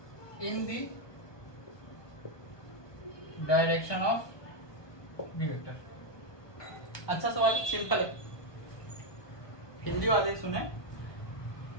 in the direction of B vector। अच्छा सवाल है, सिंपल है। हिंदी वाले सुने,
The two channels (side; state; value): right; late; 1.2 ms